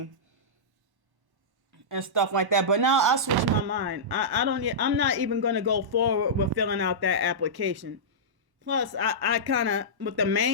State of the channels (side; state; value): left; late; 1.1 ms